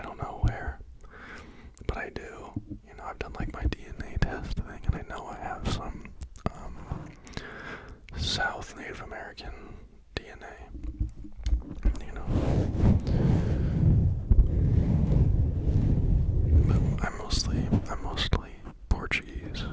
don't know where, but I do. I've done like my DNA test thing, and I know I have some South Native American DNA. But I'm mostly Portuguese,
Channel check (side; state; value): both; identical; correlation 1.00